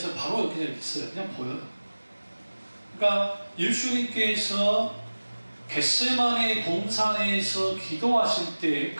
바로 그냥 있어요. 그냥 보여요. 그러니까 예수님께서 겟세마네 동산에서 기도하실 때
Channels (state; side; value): inverted; both; correlation -1.00